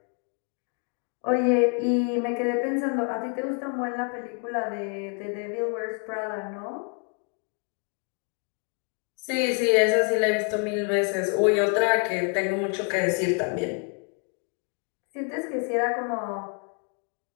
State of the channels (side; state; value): right; quieter; 37.4 dB